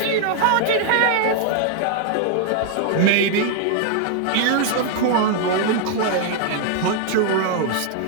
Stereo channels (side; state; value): both; different; correlation 0.00